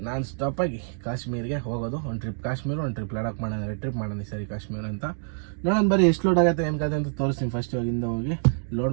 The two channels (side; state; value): left; silent; digital silence